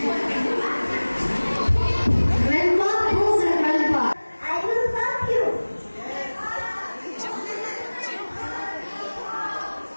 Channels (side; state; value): both; inverted; correlation -1.00